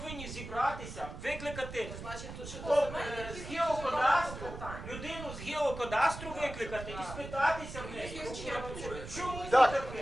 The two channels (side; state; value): right; noise; rumble, 10 dB below the sound